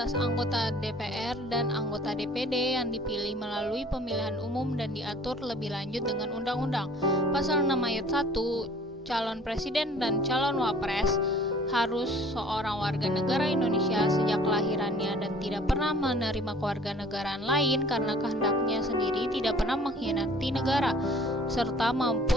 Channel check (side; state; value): both; normal; correlation 0.51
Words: anggota DPR dan anggota DPD yang dipilih melalui pemilihan umum dan diatur lebih lanjut dengan undang-undang. Pasal 6 ayat 1, calon presiden dan calon wapres harus seorang warga negara Indonesia sejak kelahirannya dan tidak pernah menerima kewarganegaraan lain karena kehendaknya sendiri tidak pernah mengkhianati negara, serta mampu